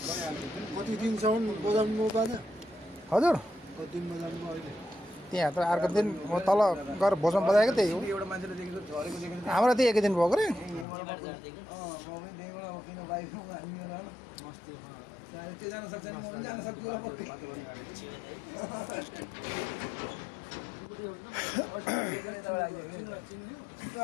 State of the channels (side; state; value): right; drops out; at 10.9 s